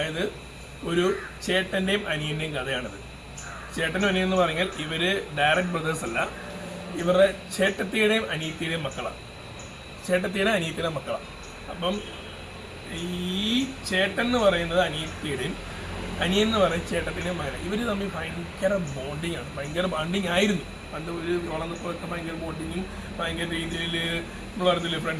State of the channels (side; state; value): both; identical; correlation 1.00